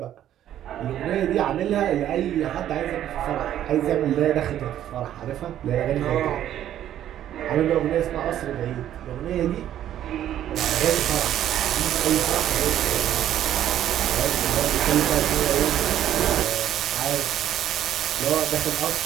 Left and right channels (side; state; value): left; quieter; 11.4 dB